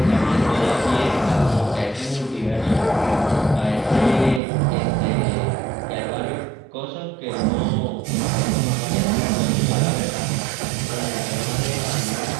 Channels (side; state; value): left; drops out; at 4.4 s